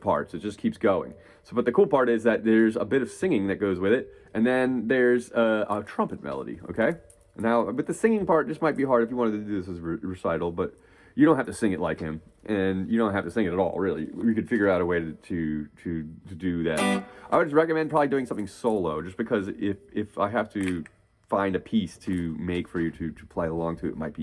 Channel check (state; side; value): identical; both; correlation 1.00